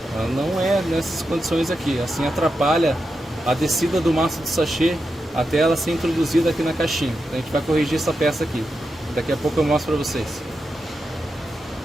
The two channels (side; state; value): both; normal; correlation 0.88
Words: Ela não é nessas condições aqui. Assim atrapalha a descida do maço de sachê até ela ser introduzida aqui na caixinha. Então a gente vai corrigir essa peça aqui. Daqui a pouco eu mostro para vocês.